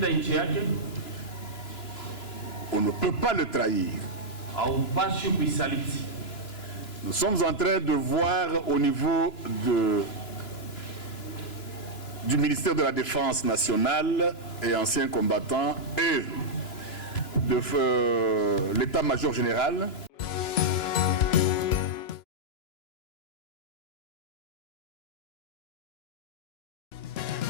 nchi yake, on ne peut pas le trahir. Haupashi kuisaliti. Nous sommes en train de voir au niveau du ministère de la Défense nationale et anciens combattants et de l'état-major général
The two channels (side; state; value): right; late; 2.9 ms